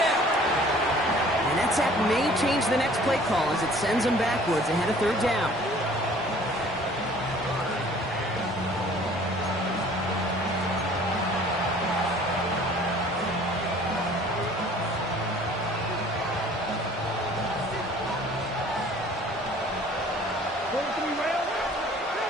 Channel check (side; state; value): both; normal; correlation 0.51